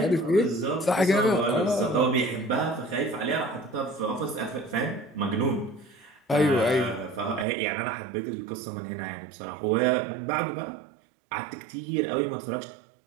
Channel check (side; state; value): left; drops out; at 7.5 s